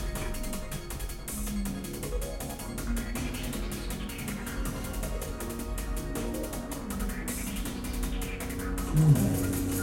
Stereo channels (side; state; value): both; identical; correlation 1.00